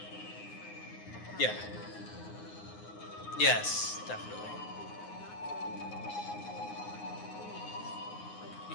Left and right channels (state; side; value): late; right; 9.6 ms